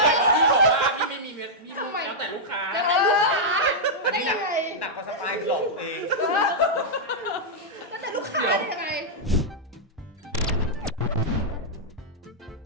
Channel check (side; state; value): both; normal; correlation -0.08